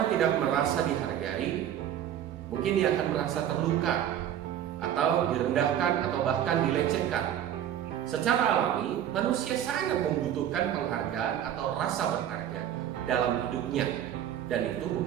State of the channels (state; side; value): quieter; left; 10.6 dB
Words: tidak merasa dihargai, mungkin dia akan merasa terluka atau direndahkan atau bahkan dilecehkan. Secara alami, manusia sangat membutuhkan penghargaan atau rasa berharga dalam hidupnya, dan itu